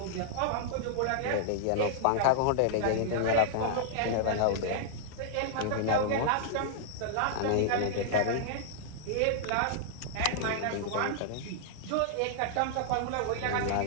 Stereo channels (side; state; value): both; different; correlation -0.01